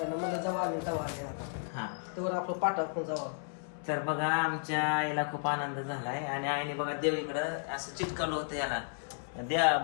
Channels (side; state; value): right; silent; 55 dB below the other